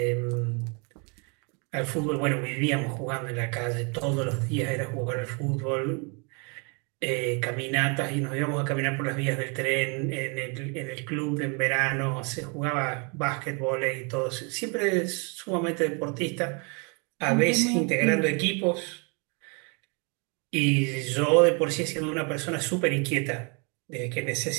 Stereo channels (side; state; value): left; quieter; 34.0 dB